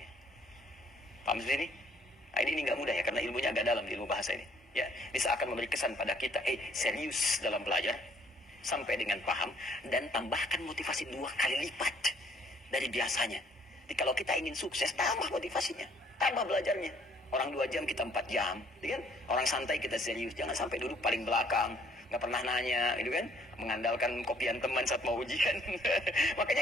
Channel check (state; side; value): normal; both; correlation 0.62